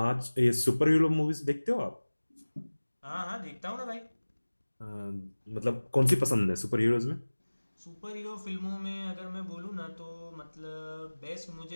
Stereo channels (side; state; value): both; inverted; correlation -1.00